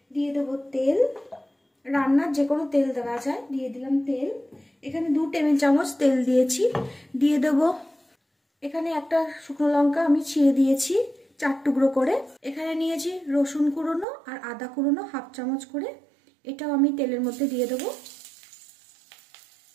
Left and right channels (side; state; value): left; drops out; at 14.1 s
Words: দিয়ে দেবো তেল। রান্নার যে কোনো তেল দেওয়া যায়। দিয়ে দিলাম তেল, এখানে 2 টেবিল চামচ তেল দিয়েছি। দিয়ে দেবো এখানে একটা শুকনো লঙ্কা আমি ছিঁড়ে দিয়েছি 4 টুকরো করে। এখানে নিয়েছি রসুন কুড়োনো আর আদা কুড়োনো 1/2 চামচ করে, এটাও আমি তেলের মধ্যে দিয়ে দেবো।